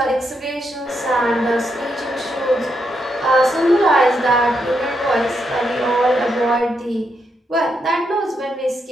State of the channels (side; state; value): both; normal; correlation 0.81